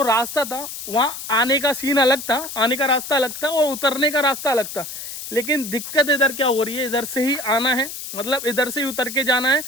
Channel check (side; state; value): left; noise; hiss, 9 dB below the sound